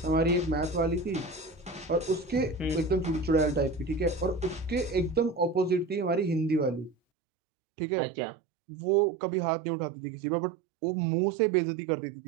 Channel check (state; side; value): drops out; left; at 7.0 s